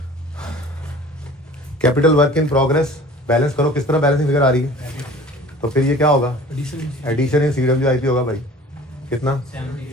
Capital work in progress balance करो, किस तरह बैलेंसिंग फिगर आ रही है? तो फिर ये क्या होगा? एडिशन इन CWIP होगा भाई, कितना?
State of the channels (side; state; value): both; normal; correlation 0.45